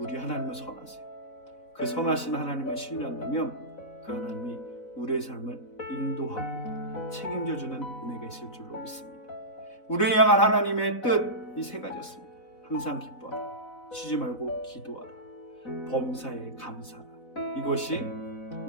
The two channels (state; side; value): late; right; 4.0 ms